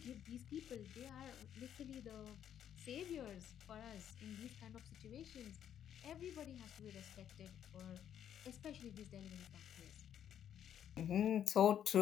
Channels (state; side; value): quieter; right; 9.7 dB